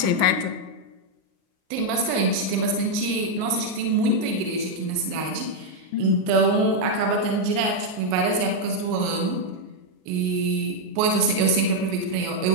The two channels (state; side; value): late; left; 38 ms